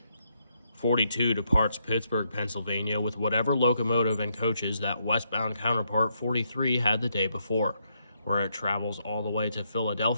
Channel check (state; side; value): inverted; both; correlation -0.77